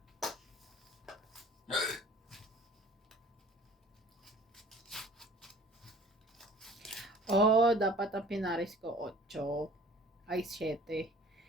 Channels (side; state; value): both; normal; correlation 0.48